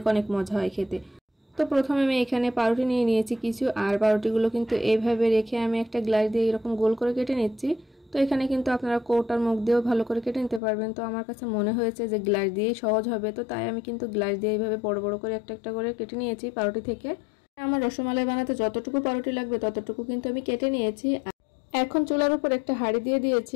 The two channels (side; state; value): right; drops out; at 10.6 s